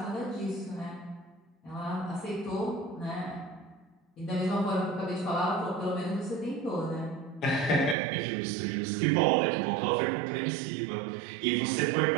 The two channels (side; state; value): left; drops out; at 8.0 s